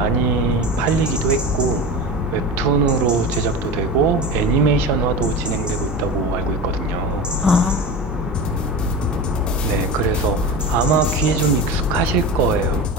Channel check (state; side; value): normal; both; correlation 0.28